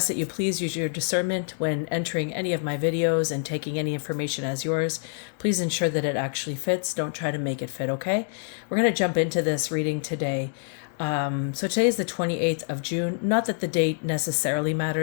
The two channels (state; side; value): silent; right; 61 dB below the other